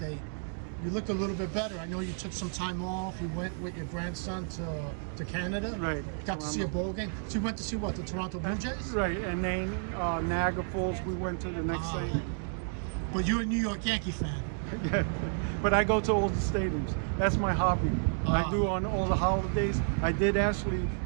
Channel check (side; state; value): left; silent; 57 dB below the other